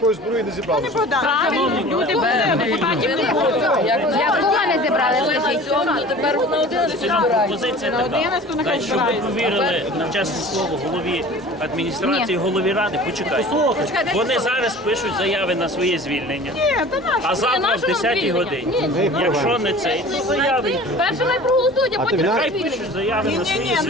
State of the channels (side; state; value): both; normal; correlation 0.42